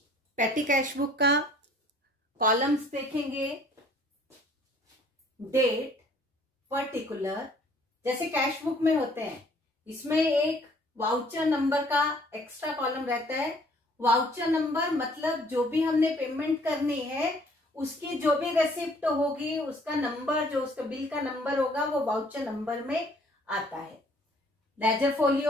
पेटी कैश बुक का कॉलम्स देखेंगे, डेट, पर्टिकुलर, जैसे कैश बुक में होते हैं। इसमें एक वाउचर नंबर का एक्स्ट्रा कॉलम रहता है। वाउचर नंबर मतलब जो भी हमने पेमेंट करनी है उसकी जो भी रेसिप्ट होगी उसका नंबर, जो उसका बिल का नंबर होगा वो वाउचर नंबर में आता है। लेजर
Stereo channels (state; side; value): normal; both; correlation 0.58